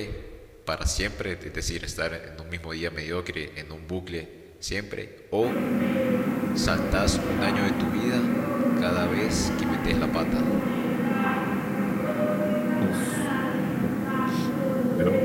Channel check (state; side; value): identical; both; correlation 1.00